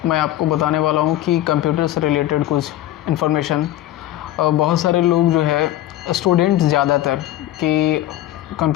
मैं आपको बताने वाला हूं कि कंप्यूटर से रिलेटेड कुछ इन्फॉर्मेशन। बहुत सारे लोग जो है स्टूडेंट्स ज़्यादातर कि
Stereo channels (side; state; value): right; quieter; 13.9 dB